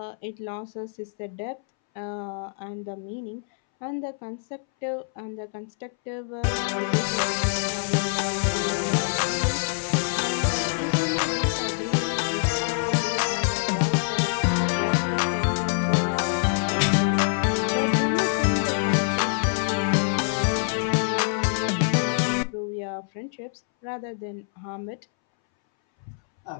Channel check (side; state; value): right; silent; 61 dB below the other